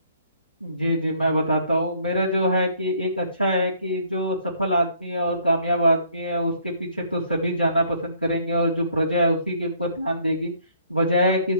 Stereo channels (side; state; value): both; inverted; correlation -0.63